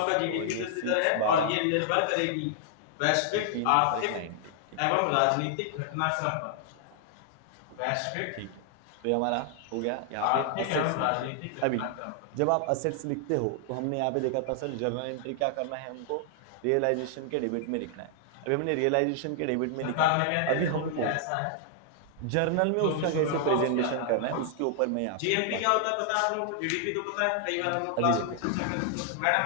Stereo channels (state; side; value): different; both; correlation 0.00